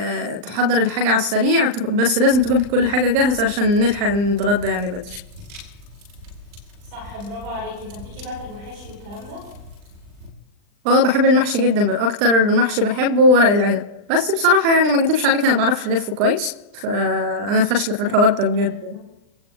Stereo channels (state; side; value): late; left; 39 ms